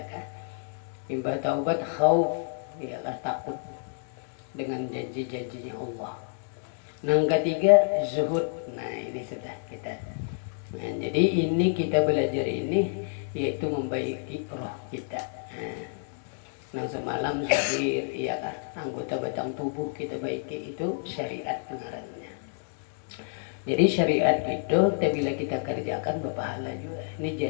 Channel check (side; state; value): right; silent; 59 dB below the other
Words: kan. Imbah taubat khauf ya kan takut dengan janji-janjinya Allah. Yang ketiga zuhud. Nah, ini sudah kita. Nah, jadi ini kita belajar ini yaitu membaiki roh kita. Nah, semalam zahir iya kan anggota batang tubuh kita baiki itu syariat pengarannya. Jadi syariat itu bila kita kerjakan berpahala juga. Ini